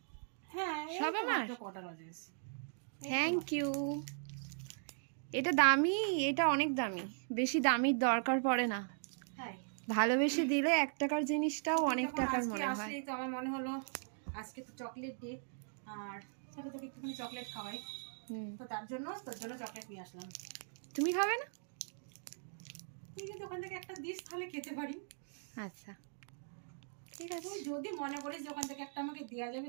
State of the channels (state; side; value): silent; left; digital silence